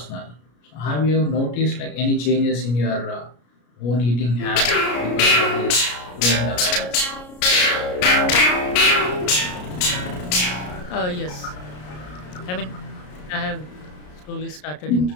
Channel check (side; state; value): right; late; 33 ms